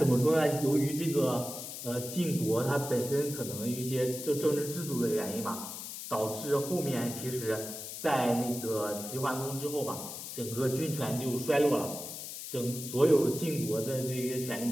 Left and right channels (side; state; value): left; noise; hiss, 8 dB below the sound